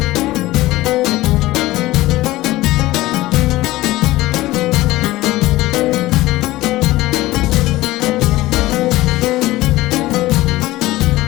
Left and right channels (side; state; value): right; quieter; 17.8 dB